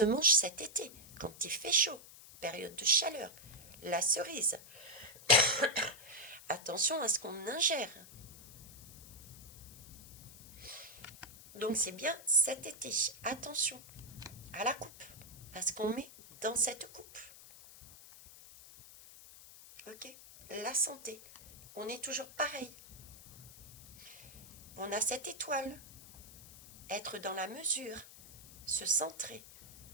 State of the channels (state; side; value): noise; left; hiss, 18 dB below the sound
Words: mangent cet été, quand il fait chaud, période de chaleur. La cerise. Attention à ce qu'on ingère. Donc c'est bien cet été. Attention à la coupe, à ce qu'on met dans cette coupe. Ok? La santé. On est toujours pareil. On a cette étoile. Être dans la mesure. Se centrer.